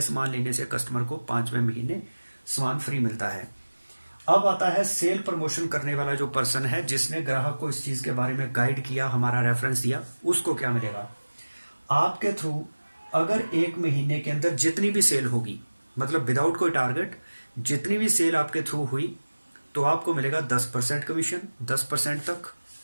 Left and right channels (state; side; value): inverted; both; correlation -1.00